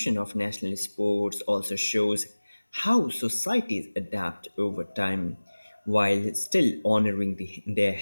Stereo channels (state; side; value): inverted; both; correlation -1.00